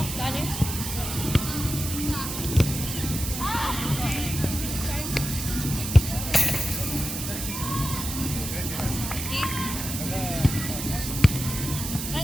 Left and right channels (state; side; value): noise; right; hiss, 5 dB below the sound